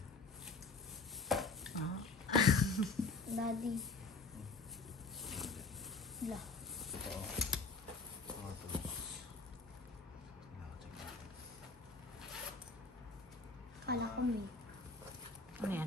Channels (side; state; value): right; quieter; 3.8 dB